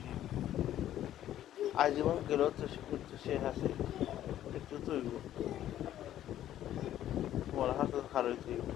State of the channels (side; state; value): right; quieter; 12.1 dB